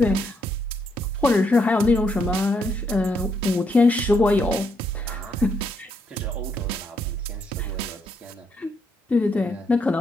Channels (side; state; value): both; normal; correlation 0.77